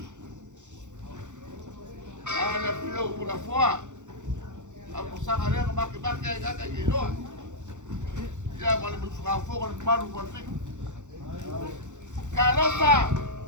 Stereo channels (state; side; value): late; left; 0.85 ms